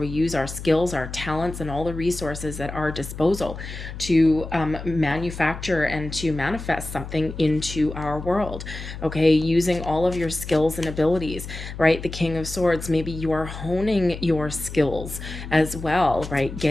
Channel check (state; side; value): noise; left; hum, 10 dB below the sound